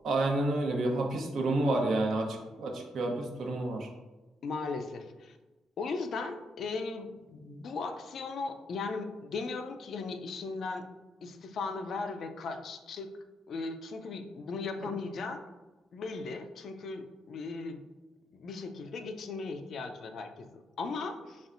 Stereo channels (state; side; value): normal; both; correlation 0.77